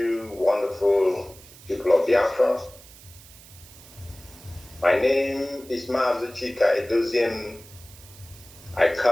wonderful people of Biafra. My name is Mazi Chika Edoziem. I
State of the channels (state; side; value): noise; right; hiss, 21 dB below the sound